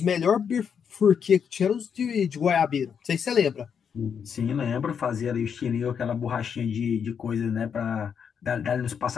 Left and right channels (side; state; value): right; quieter; 7.2 dB